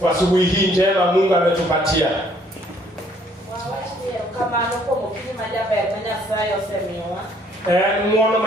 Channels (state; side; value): normal; both; correlation 0.63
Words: asubuhi hii njema Mungu ametupatia. Kama nuko mukini majaba ya kwenye sayo semiwa. Mwono